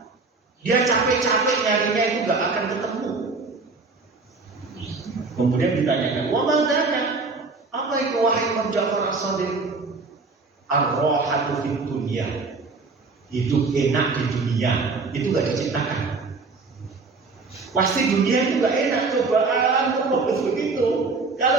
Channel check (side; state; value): left; quieter; 4.0 dB